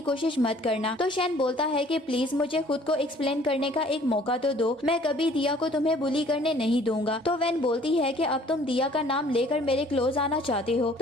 कोशिश मत करना। तो शैन बोलता है कि प्लीज मुझे खुद को एक्सप्लेन करने का एक मौका तो दो, मैं कभी दिया को तुम्हें बुली करने नहीं दूंगा। तो वैन बोलती है कि अब तुम दिया का नाम लेकर मेरे क्लोज आना चाहते हो।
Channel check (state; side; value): normal; both; correlation 0.55